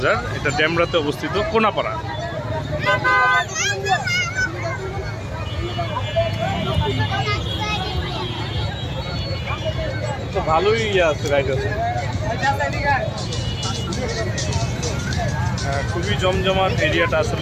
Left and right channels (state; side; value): identical; both; correlation 1.00